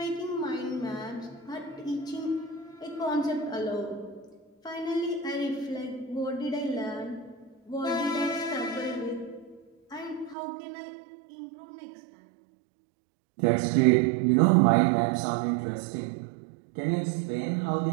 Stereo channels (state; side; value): drops out; left; at 10.4 s